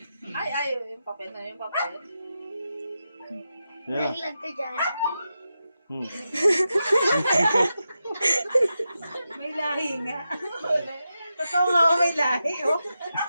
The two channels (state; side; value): inverted; both; correlation -0.89